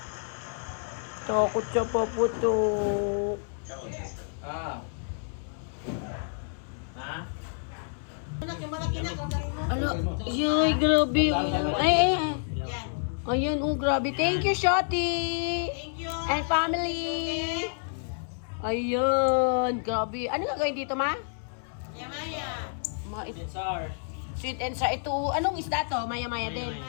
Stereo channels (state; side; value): silent; right; 59 dB below the other